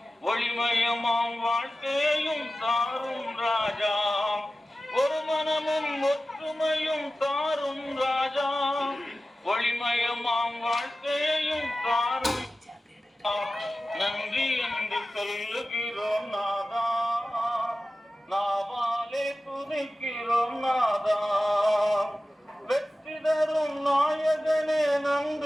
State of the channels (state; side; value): normal; both; correlation 0.95